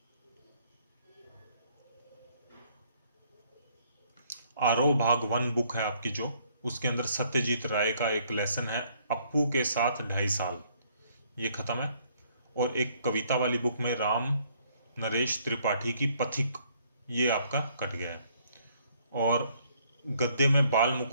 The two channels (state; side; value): inverted; both; correlation -0.66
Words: आरोह भाग 1 बुक है आपकी जो, उसके अंदर सत्यजीत राय का एक लेसन है, अप्पू के साथ 2.5 साल, ये खत्म है। और एक कविता वाली बुक में राम नरेश त्रिपाठी की पथिक, ये आपका कट गया है। और गद्य में बाल